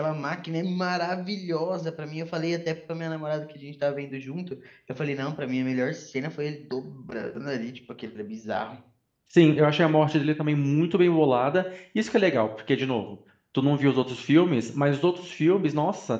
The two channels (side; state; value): both; identical; correlation 1.00